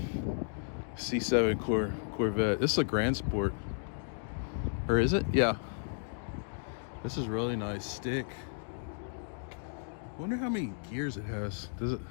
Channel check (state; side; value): silent; right; digital silence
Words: C7 Corvette. This is a Grand Sport, or is it? Yeah, this is really nice. Stick. Wonder how many gears it has. Does